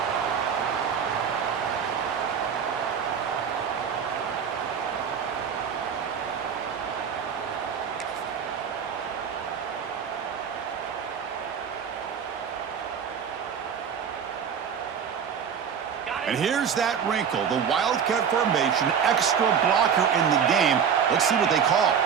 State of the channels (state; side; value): quieter; left; 7.4 dB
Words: And here's that wrinkle, the Wildcat formation, extra blocker in the game. Let's see what they call.